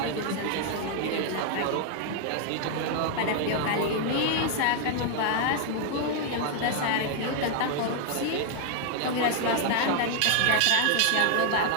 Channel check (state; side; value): different; both; correlation 0.00